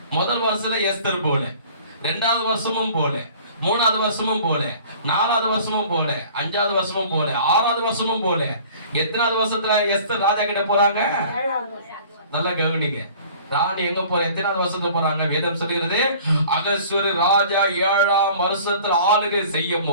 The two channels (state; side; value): inverted; both; correlation -0.48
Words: முதல் வருஷத்துல எஸ்தர் போல, 2வது வருஷமும் போல, 3வது வருஷமும் போல, 4வது வருஷமும் போல, 5வது வருஷமும் போல, 6வது வருஷமும் போல. எத்தனாவது வருஷத்துல எஸ்தர் ராஜா கிட்ட போறாங்க? நல்லா கவனிங்க. ராணி எங்க போற? எத்தனாவது வருஷத்துக்கு போறாங்க? வேதம் சொல்லுகிறது, அகஸ்வர ராஜா 7ஆம் வருஷத்துல ஆளுகை செய்யும்